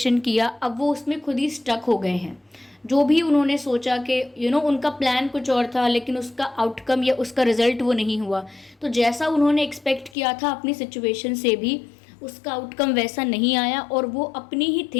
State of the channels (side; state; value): right; drops out; at 10.2 s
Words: किया, अब वो उसमें खुद ही स्टक हो गए हैं। जो भी उन्होंने सोचा कि उनका प्लान कुछ और था लेकिन उसका आउटकम या उसका रिजल्ट वो नहीं हुआ, तो जैसा उन्होंने एक्सपेक्ट किया था अपनी सिचुएशन से भी उसका आउटकम वैसा नहीं आया और वो अपनी ही